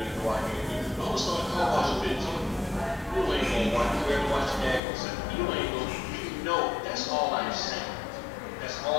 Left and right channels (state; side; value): drops out; right; at 4.8 s